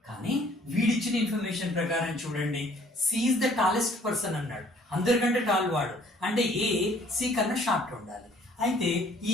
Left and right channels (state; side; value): normal; both; correlation 0.58